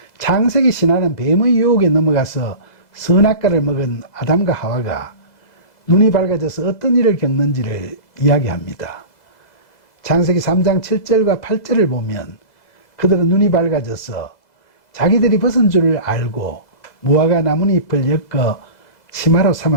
창세기 신화는 뱀의 유혹에 넘어가서 선악과를 먹은 아담과 하와가 눈이 밝아져서 어떤 일을 겪는지를 이야기합니다. 창세기 3장 7절과 8절을 보면 그들은 눈이 밝아져서 자기들이 벗은 줄을 알고 무화과 나뭇잎을 엮어 치마로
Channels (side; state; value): right; late; 2.0 ms